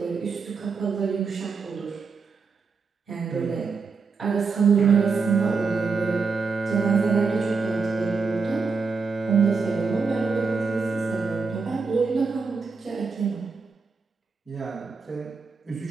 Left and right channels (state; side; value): quieter; left; 4.8 dB